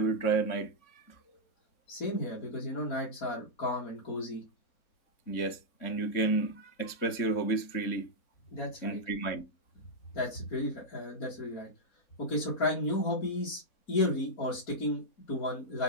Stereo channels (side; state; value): right; late; 3.6 ms